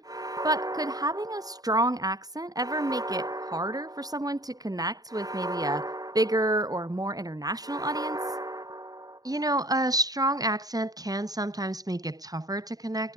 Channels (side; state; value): left; late; 0.18 ms